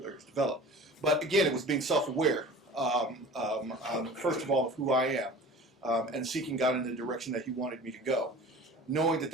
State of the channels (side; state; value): both; normal; correlation 0.40